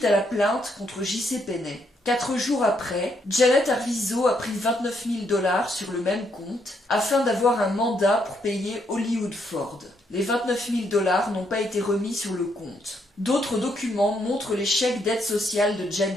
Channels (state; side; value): normal; both; correlation 0.75